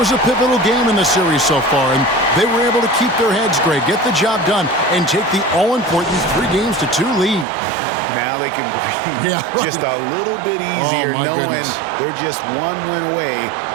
a pivotal game in the series so far, and they were able to keep their heads straight, get the job done, and take the all-important 3-2 lead. Now they can breathe just a little bit easier, knowing they're just one win away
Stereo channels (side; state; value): left; drops out; at 7.5 s